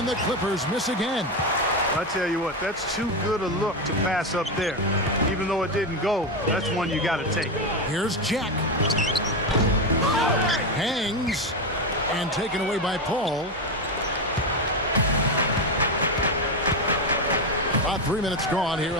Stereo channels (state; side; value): normal; both; correlation 0.12